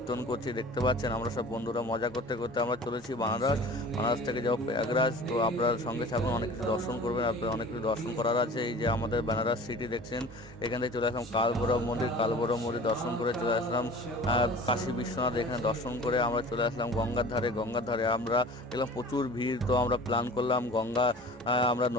করছি, দেখতে পাচ্ছেন। আমরা সব বন্ধুরা মজা করতে করতে আমরা চলেছি বানারস থেকে যাবো প্রয়াগরাজ। তো আপনার সঙ্গে থাকুন, অনেক কিছু দর্শন করবেন, আপনার অনেক কিছু দর্শন করার আছে। এই যে আমাদের বেনারস সিটি দেখছেন, এখান থেকে চলে আসলাম কালভৈরব মন্দির দর্শন করে চলে আসলাম কাশী বিশ্বনাথ, এখানে দর্শন করে আমরা চলে আসলাম গঙ্গার ধারে আমরা দেখলাম প্রচুর ভিড়। তো আমরা প্ল্যান করলাম আমরা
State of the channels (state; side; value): normal; both; correlation 0.42